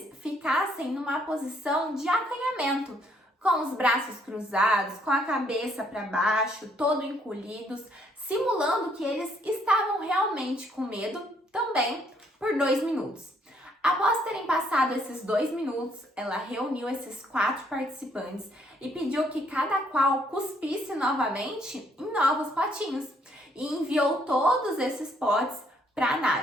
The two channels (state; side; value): normal; both; correlation 0.68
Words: ficassem numa posição de acanhamento, com os braços cruzados, com a cabeça para baixo, todo encolhidos, simulando que eles estavam realmente com medo também por 2 minutos. Após terem passado esses 2 minutos, ela reuniu esses 4 participantes e pediu que cada qual cuspisse novamente em novos potinhos e enviou todos esses potes para